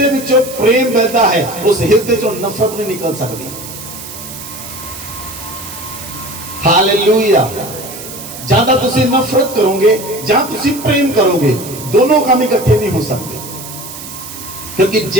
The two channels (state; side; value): noise; right; hiss, 12 dB below the sound